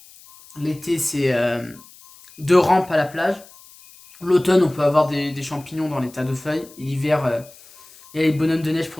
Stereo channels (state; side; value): noise; left; hiss, 23 dB below the sound